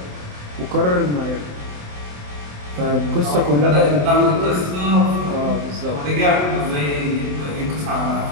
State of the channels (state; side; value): late; left; 27 ms